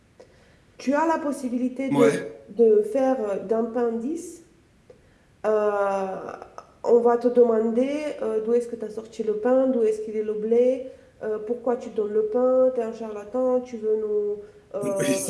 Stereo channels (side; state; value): both; identical; correlation 1.00